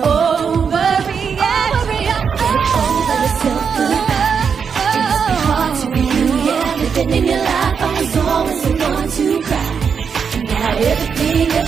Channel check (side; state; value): left; quieter; 6.4 dB